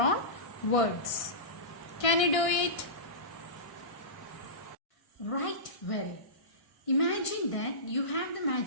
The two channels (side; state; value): right; late; 1.6 ms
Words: words. Can you do it? Right, well. Imagine that you have the